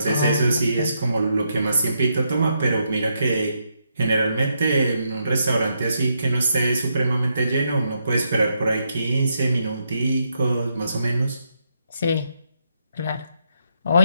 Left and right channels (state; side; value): inverted; both; correlation -0.79